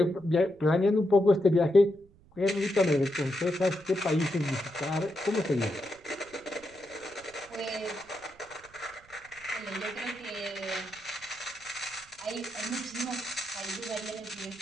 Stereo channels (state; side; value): noise; right; rumble, 27 dB below the sound